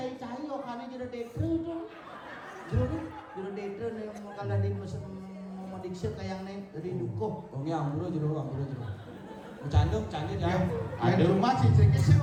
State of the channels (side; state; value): both; identical; correlation 1.00